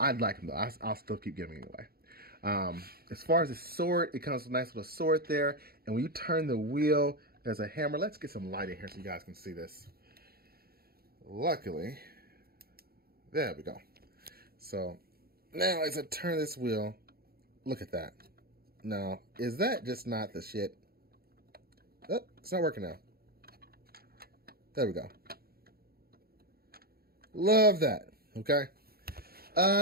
like them though. I'll still keep giving anyway. As far as the sword, it comes with a nice little sword there. And when you turn the wheel, there's a hammer. Let's get some light in here so you guys can see this. Luckily, there we go. So now as I turn this wheel, look at that. Now, is that just not the shit? Oh, it's not working now. There we go. Love that. Okay.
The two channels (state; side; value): late; left; 0.44 ms